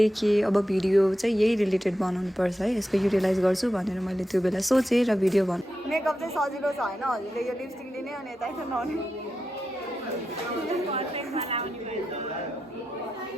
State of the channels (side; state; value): both; normal; correlation 0.89